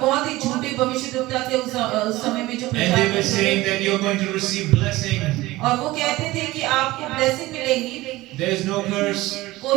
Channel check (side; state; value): left; quieter; 18.7 dB